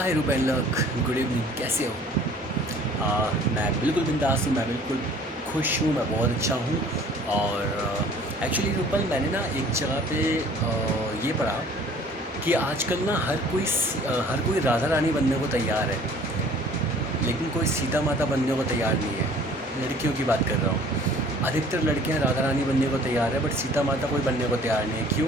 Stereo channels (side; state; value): both; normal; correlation 0.52